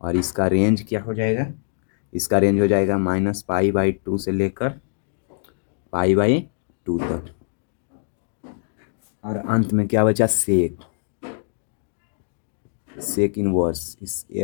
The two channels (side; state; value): right; silent; digital silence